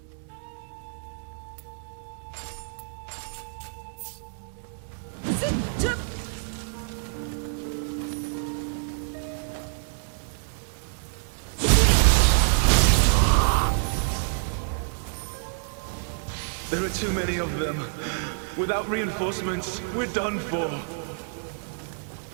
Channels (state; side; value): silent; left; 60 dB below the other